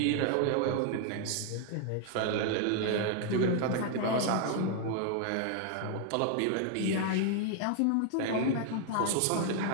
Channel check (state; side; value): different; both; correlation 0.00